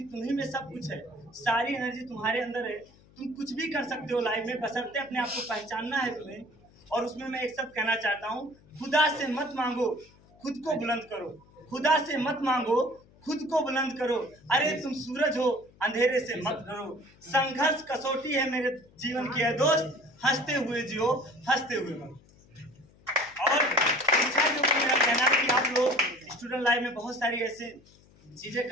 तुम्हीं में सब कुछ है, सारी एनर्जी तुम्हारे अंदर है, तुम कुछ भी कर सकते हो लाइफ में, बशर्ते अपने आप को पहचानना है तुम्हें। और उसमें मैं एक शब्द कहना चाहता हूँ, खुदा से मत मांगो, खुद को बुलंद करो। खुदा से मत मांगो, खुद को बुलंद करो। अरे तुम सूरज हो, अंधेरे से मत डरो। संघर्ष कसौटी है मेरे जीवन की है दोस्त, हंसते हुए जियो, हंसते हुए मरो। और शिक्षा के ऊपर मेरा कहना है कि आप लोग स्टूडेंट लाइफ में बहुत सारी ऐसे चीज़ें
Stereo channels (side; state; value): left; noise; hum, 27 dB below the sound